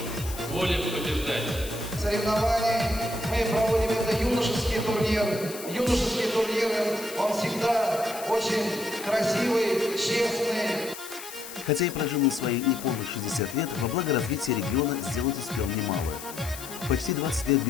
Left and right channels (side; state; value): left; noise; hiss, 12 dB below the sound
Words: воля побеждать. Соревнования мы проводим это юношеский турнир. Юношеские турниры, он всегда очень красивый, честный. Хотя и прожил на свои неполных 60 лет, во благо развития региона сделать успел немало. Почти 20 лет